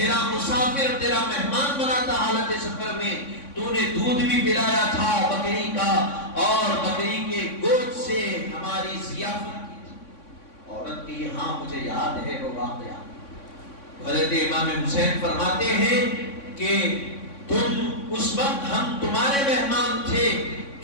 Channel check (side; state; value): right; late; 3.6 ms